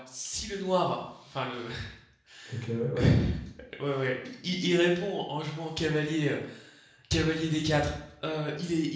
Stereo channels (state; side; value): identical; both; correlation 1.00